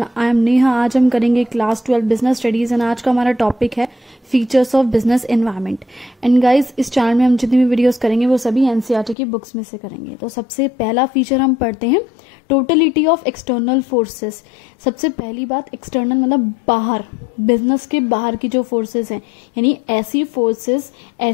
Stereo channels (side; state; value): right; drops out; at 9.2 s